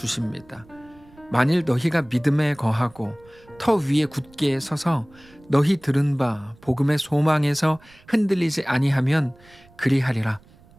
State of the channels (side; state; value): right; noise; rumble, 27 dB below the sound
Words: 만일 너희가 믿음에 거하고 터 위에 굳게 서서 너희 들은 바 복음의 소망에서 흔들리지 아니하면 그리하리라.